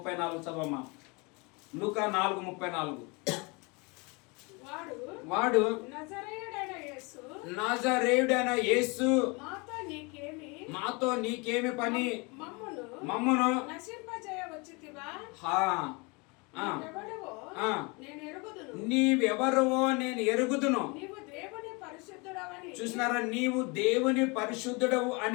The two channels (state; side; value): quieter; right; 28.7 dB